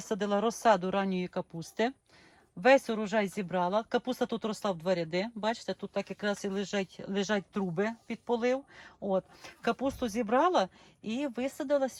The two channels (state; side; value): identical; both; correlation 1.00